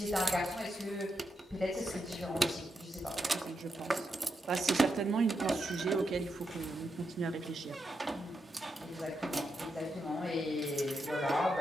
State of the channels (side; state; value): both; normal; correlation 0.85